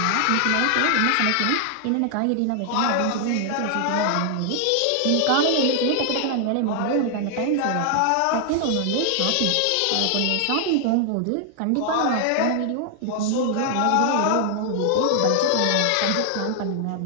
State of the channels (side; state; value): both; different; correlation 0.00